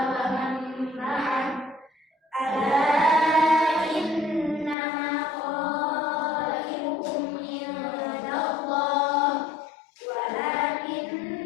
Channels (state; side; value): drops out; right; at 4.8 s